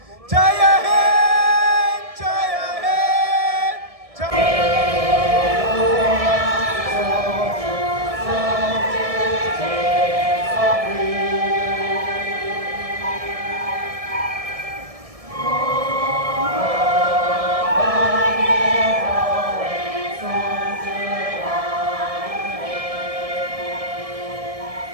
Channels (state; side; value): late; left; 1.7 ms